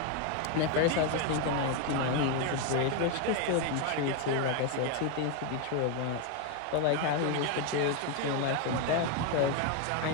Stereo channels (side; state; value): both; different; correlation 0.01